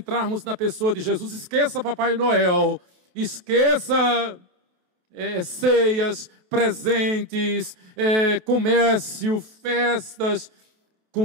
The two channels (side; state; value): left; late; 28 ms